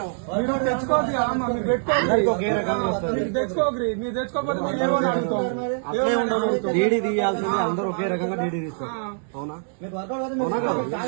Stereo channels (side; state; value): left; silent; 63 dB below the other